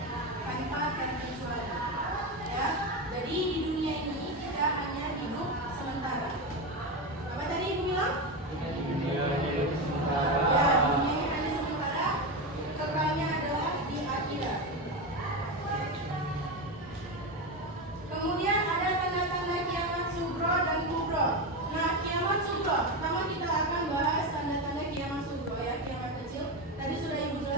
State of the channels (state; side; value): normal; both; correlation 0.15